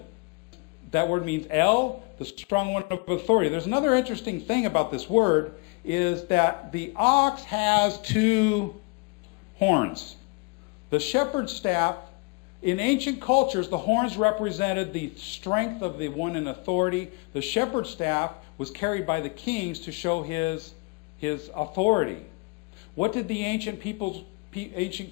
That word means El, the strong one of authority. There's another interesting thing about this word, is that the ox has two horns. The shepherd's staff, in ancient cultures, the horns represented the strength of the one in authority. The shepherd's staff was carried by the kings to show his authority. What did the ancient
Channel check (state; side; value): quieter; right; 30.0 dB